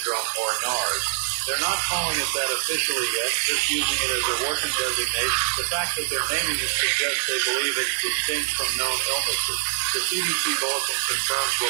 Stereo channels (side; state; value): left; silent; 62 dB below the other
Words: or NARS. They're not calling it that officially yet, just using it as a working designation. The fact that they're naming it suggests they believe it's distinct from known illnesses. The CDC bulletin confirms